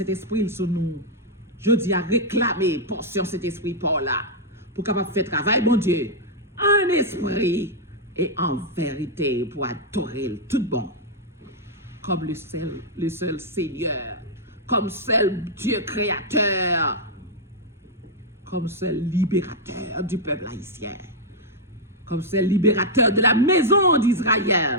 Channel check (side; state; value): both; normal; correlation -0.04